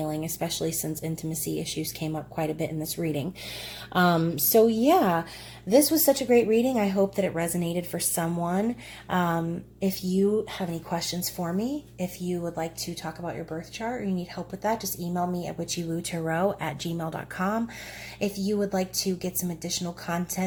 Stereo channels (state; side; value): identical; both; correlation 1.00